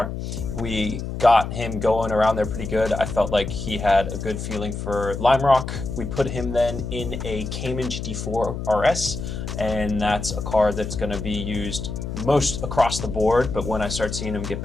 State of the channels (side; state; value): left; noise; hum, 6 dB below the sound